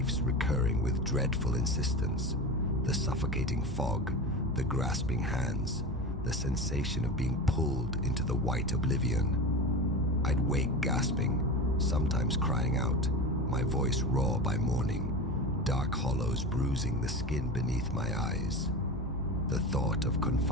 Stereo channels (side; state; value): both; normal; correlation 0.27